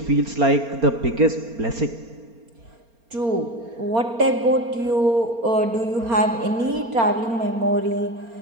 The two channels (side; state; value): left; late; 4.3 ms